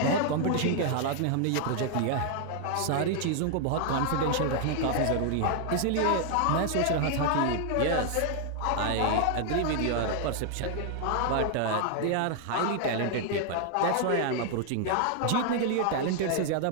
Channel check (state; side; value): different; both; correlation 0.00